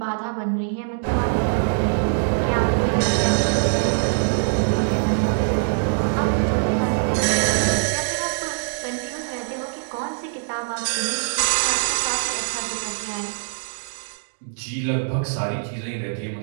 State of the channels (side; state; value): left; silent; digital silence